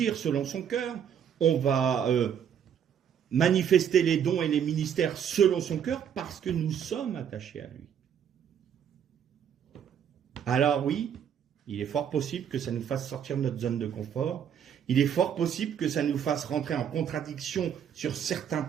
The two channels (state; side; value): quieter; left; 8.5 dB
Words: selon son cœur, on va manifester les dons et les ministères selon son cœur, parce que nous sommes attachés à lui. Alors oui, il est fort possible que ça nous fasse sortir de notre zone de confort. Il est fort possible que ça nous fasse rentrer en contradiction sur certains